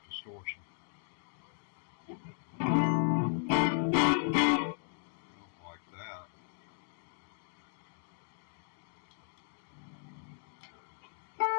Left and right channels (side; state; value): right; silent; digital silence